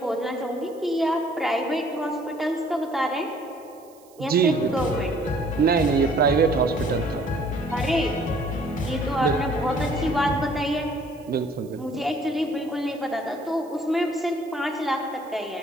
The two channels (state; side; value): noise; right; hiss, 28 dB below the sound